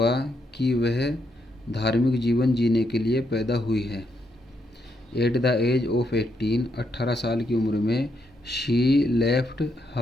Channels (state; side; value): normal; both; correlation 0.79